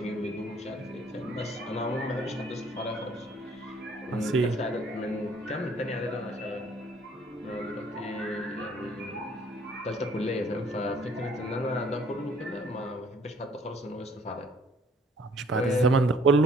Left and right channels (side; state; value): both; normal; correlation 0.59